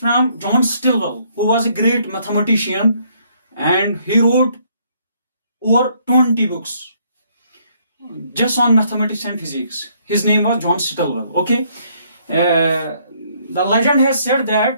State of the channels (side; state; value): both; inverted; correlation -0.68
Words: John Stilwell, who was a great mathematician, and he wrote over 20 books just on mathematics and physics. His name was John Stilwell. Okay. The legend has said